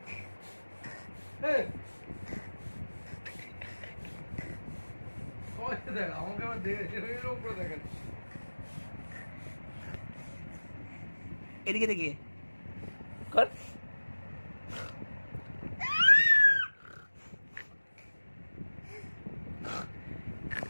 দেখ আমাকে আবার দেখে উপরে দেখেন এদিকে দেখি কর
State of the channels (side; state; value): both; inverted; correlation -1.00